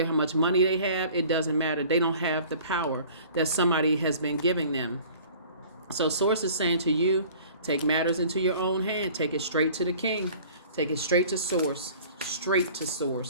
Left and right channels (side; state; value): both; inverted; correlation -0.48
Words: how much money they have. It doesn't matter. They don't have the power that somebody has been giving them. So Source is saying to you, take matters into your own hand. Take it straight to the king. Take it straight to Source. Straight to